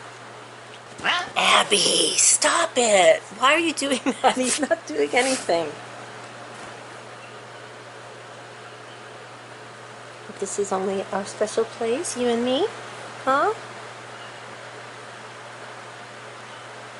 Abby, stop it. Why are you doing that? He's not doing anything. This is only our special place, you and me? Huh?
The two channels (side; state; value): both; identical; correlation 1.00